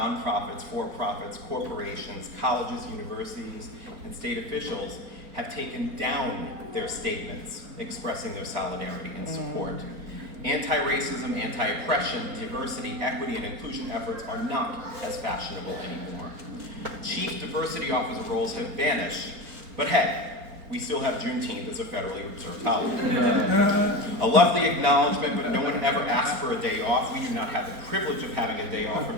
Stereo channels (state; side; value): late; left; 4.3 ms